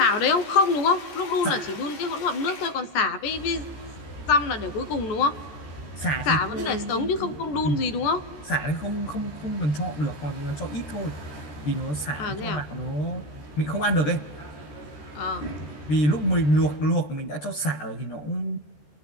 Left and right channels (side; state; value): right; late; 13 ms